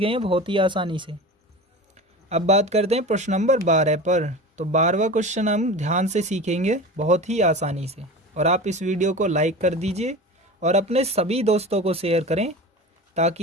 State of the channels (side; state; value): both; normal; correlation 0.32